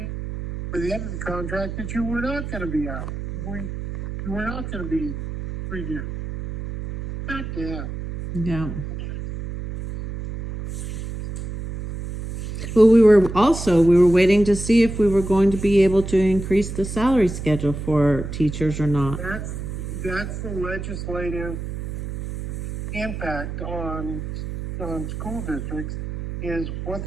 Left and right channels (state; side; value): noise; right; hum, 7 dB below the sound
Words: the end of the contract that you were not going to be out. You were not going to be renewed. God damn. yeah. Well, we were waiting to see if we were going to be able to increase the salary schedule for teachers or not. That's the legislative impact on school districts is what